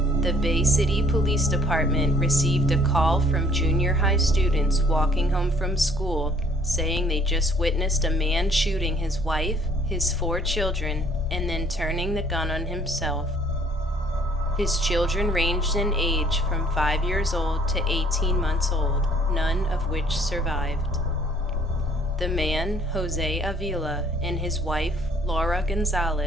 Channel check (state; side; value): normal; both; correlation 0.60